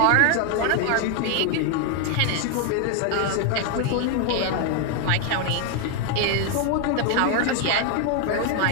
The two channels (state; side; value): different; both; correlation 0.00